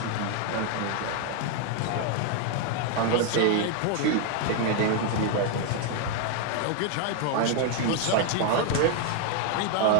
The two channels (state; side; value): different; both; correlation 0.01